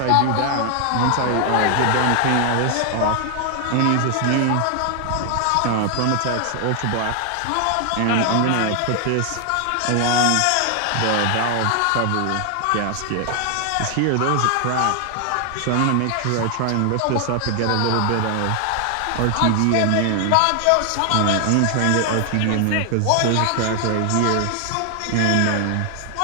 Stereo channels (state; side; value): different; both; correlation 0.00